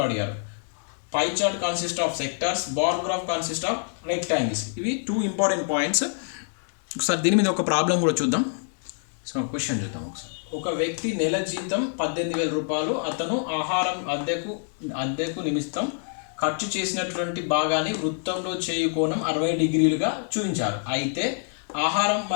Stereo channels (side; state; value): right; silent; digital silence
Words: అడిగారు. Pie chart consist of sectors, bar graph consist of rectangles. ఇవి 2 ఇంపార్టెంట్ పాయింట్స్. ఒకసారి దీని మీద ఒక ప్రాబ్లం కూడా చూద్దాం. సో క్వశ్చన్ చూద్దాం ఒకసారి. ఒక వ్యక్తి నెల జీతం 18,000 రూపాయలు. అతను ఆహారం, అద్దెకు నిమిత్తం ఖర్చు చేసినటువంటి భాగాన్ని వృత్తంలో చేయు కోణం 60 డిగ్రీలుగా చూపించారు. అయితే ఆహారం